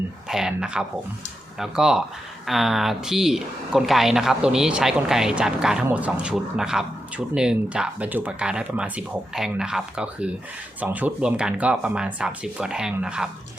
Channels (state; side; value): normal; both; correlation 0.87